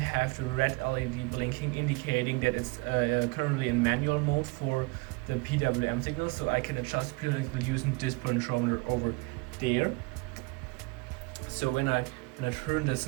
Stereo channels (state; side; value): quieter; left; 26.9 dB